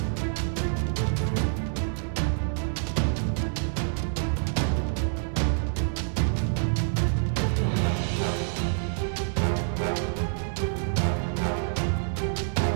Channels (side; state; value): left; silent; 60 dB below the other